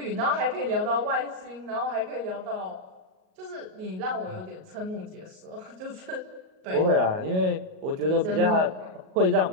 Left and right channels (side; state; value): left; late; 38 ms